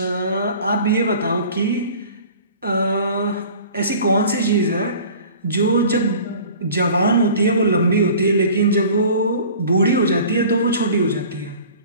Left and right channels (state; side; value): inverted; both; correlation -0.44